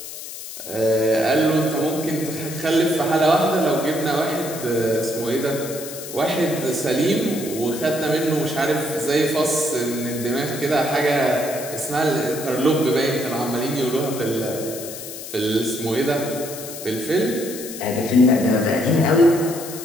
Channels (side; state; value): left; noise; hiss, 11 dB below the sound